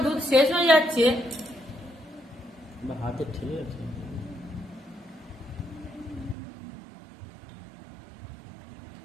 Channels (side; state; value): left; drops out; at 6.4 s